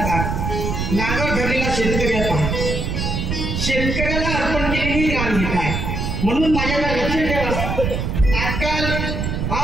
नांगर धरलेला शेतकऱ्याचा, शेतकऱ्याला अर्पण केलेली ग्रामगीता आहे. म्हणून माझ्याला लक्ष ठेवा. आजकाल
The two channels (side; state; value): right; noise; rumble, 2 dB below the sound